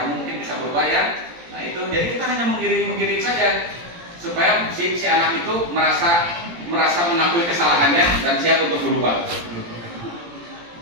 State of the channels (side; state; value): left; late; 17 ms